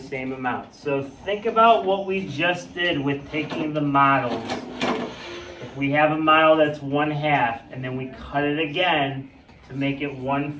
amount. So think about what we just did with taking the models. If we have a model that's 1/2 and then we cut it again to make it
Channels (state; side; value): identical; both; correlation 1.00